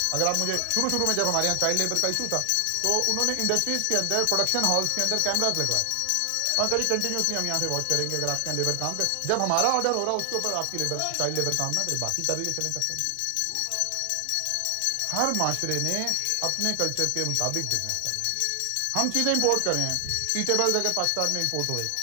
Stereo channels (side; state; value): both; different; correlation 0.00